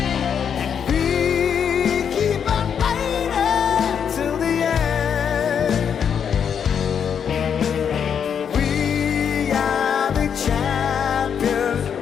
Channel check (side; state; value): right; quieter; 7.7 dB